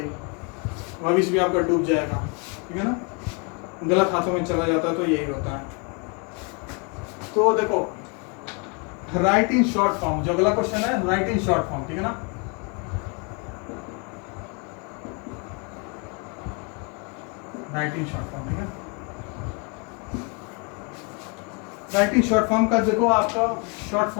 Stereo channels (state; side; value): quieter; right; 34.2 dB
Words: भविष्य भी आपका डूब जाएगा, ठीक है ना। गलत हाथों में चला जाता है तो यही होता है। तो देखो, राइट इन शॉर्ट फॉर्म, जो अगला क्वेश्चन है राइट इन शॉर्ट फॉर्म, ठीक है ना। राइट इन शॉर्ट फॉर्म, ठीक है। राइट इन शॉर्ट फॉर्म का देखो आपका शॉर्ट